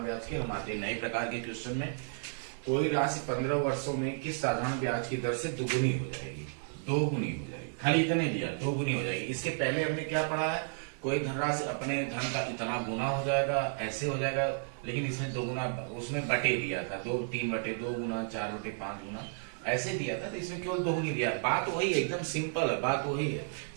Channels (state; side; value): silent; left; 56 dB below the other